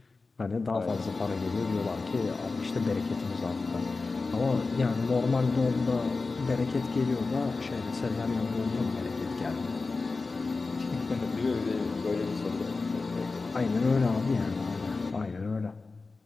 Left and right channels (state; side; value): quieter; right; 3.9 dB